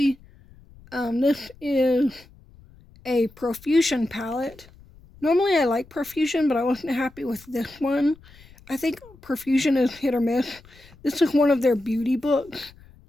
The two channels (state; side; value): noise; left; rumble, 25 dB below the sound